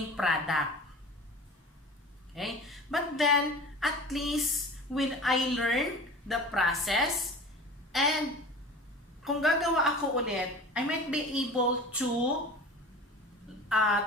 product. Okay? But then, at least, when I learn the process, and kung gagawa ako ulit, I might be able to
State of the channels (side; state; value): both; normal; correlation 0.38